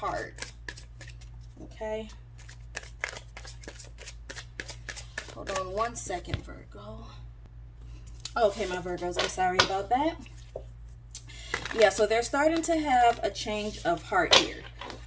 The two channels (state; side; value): identical; both; correlation 1.00